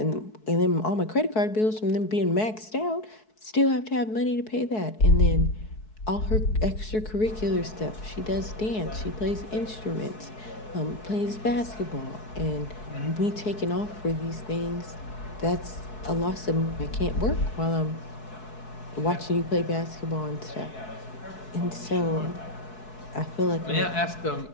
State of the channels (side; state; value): right; late; 4.6 ms